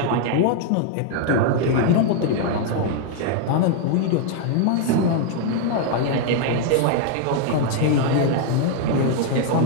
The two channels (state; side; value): different; both; correlation 0.00